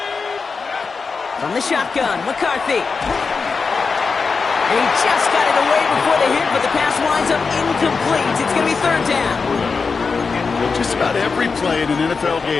From the shotgun, McCarthy. He just got it away before the hit, but the pass winds up incomplete. It's going to be 3rd down. Just about every play in an NFL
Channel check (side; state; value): right; quieter; 4.8 dB